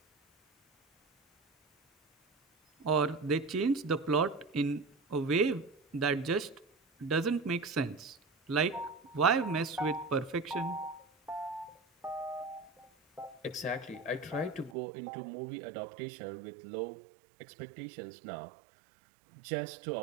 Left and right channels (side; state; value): left; drops out; at 14.8 s